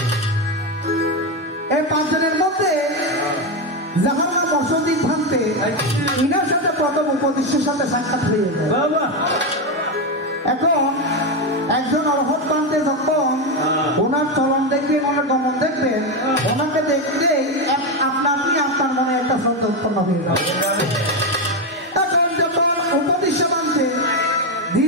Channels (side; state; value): both; normal; correlation 0.10